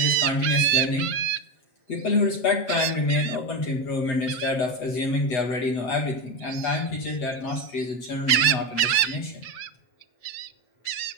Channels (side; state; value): right; late; 7.6 ms